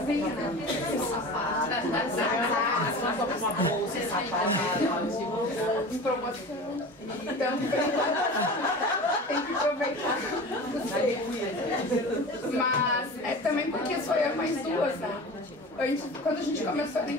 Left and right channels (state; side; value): normal; both; correlation 0.34